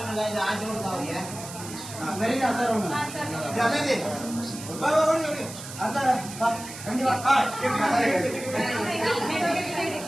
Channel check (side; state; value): right; noise; hiss, 12 dB below the sound